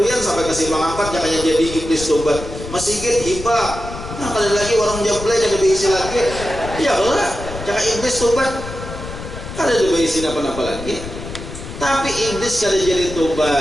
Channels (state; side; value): noise; left; rumble, 10 dB below the sound